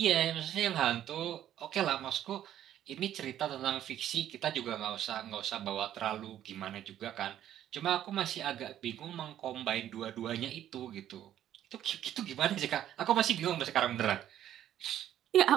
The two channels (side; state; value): left; quieter; 11.4 dB